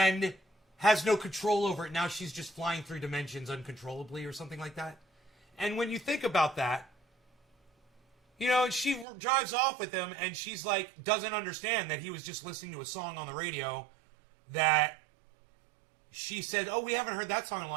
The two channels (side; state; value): left; drops out; at 9.1 s